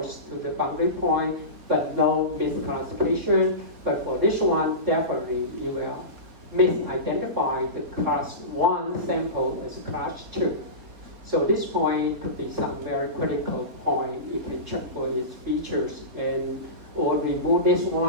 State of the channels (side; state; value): left; late; 3.7 ms